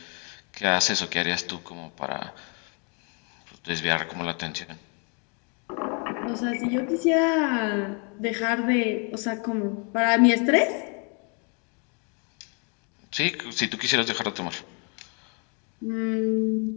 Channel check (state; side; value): quieter; right; 36.5 dB